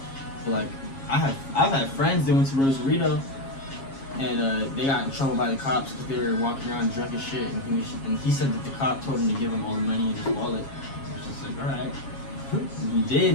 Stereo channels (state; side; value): late; right; 7.4 ms